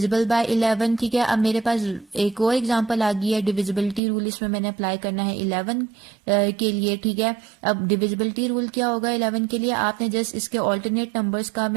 by 11, ठीक है। अब मेरे पास एक और एग्जांपल आ गई है, डिविजिबिलिटी रूल इसमें मैंने अप्लाई करना है 11 के लिए, ठीक है। अब डिविजिबिलिटी रूल क्या होगा 11 के लिए, आपने जस्ट इसके ऑल्टरनेट नंबर्स का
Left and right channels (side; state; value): left; drops out; at 4.0 s